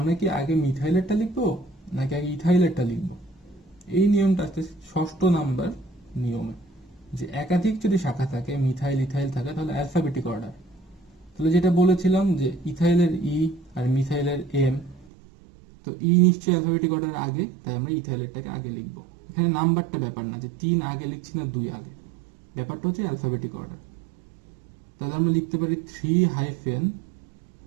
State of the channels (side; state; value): left; drops out; at 15.1 s